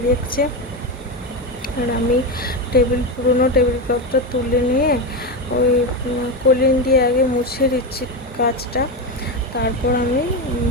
দেখছে। আর আমি পুরোনো টেবিল ক্লথটা তুলে নিয়ে ওই কলিন দিয়ে আগে মুছে দিচ্ছি কাচটা, তারপর আমি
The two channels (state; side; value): normal; both; correlation 0.14